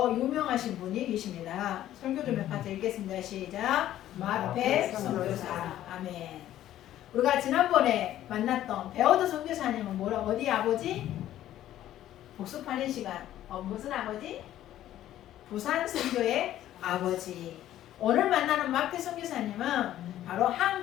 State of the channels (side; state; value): right; quieter; 12.8 dB